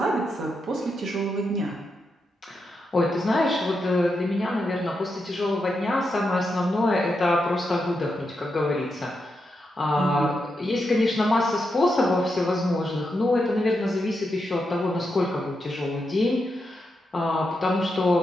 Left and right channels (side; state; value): both; normal; correlation 0.85